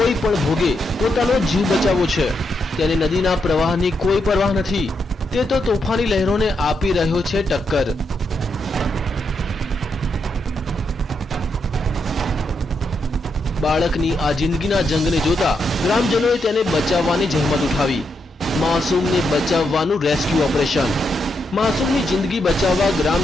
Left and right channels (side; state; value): both; normal; correlation 0.81